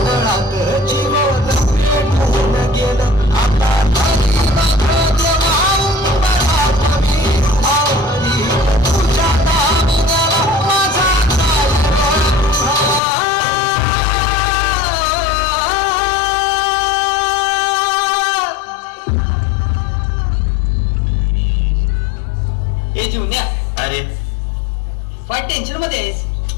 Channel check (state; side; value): drops out; right; at 13.0 s